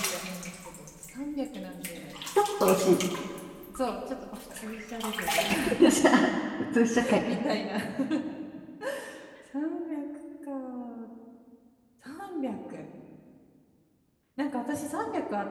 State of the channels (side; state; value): both; identical; correlation 1.00